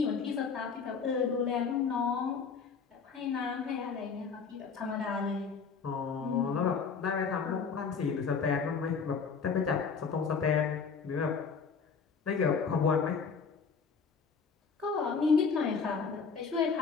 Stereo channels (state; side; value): quieter; right; 5.6 dB